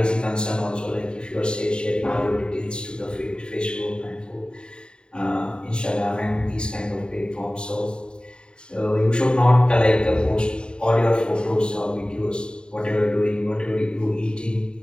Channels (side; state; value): right; late; 0.050 ms